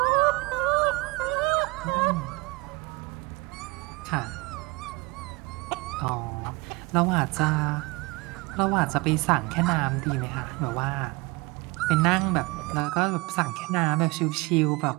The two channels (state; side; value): quieter; left; 25.0 dB